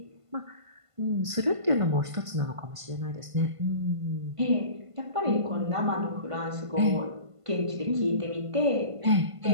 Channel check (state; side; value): late; left; 1.5 ms